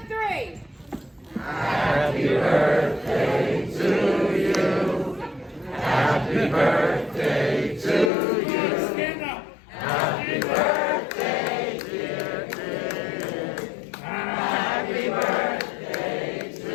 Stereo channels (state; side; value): drops out; right; at 8.1 s